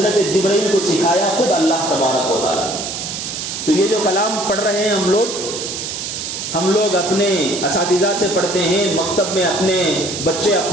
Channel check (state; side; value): noise; right; hiss, 6 dB below the sound